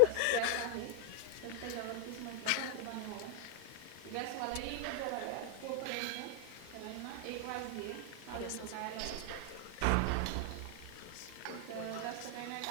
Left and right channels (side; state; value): both; different; correlation 0.00